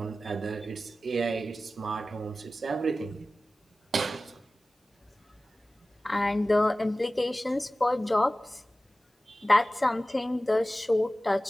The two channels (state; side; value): normal; both; correlation 0.96